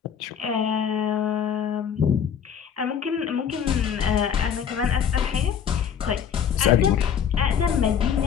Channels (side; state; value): right; quieter; 8.0 dB